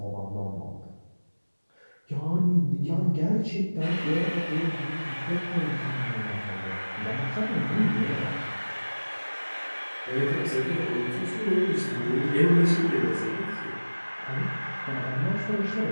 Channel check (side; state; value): both; inverted; correlation -1.00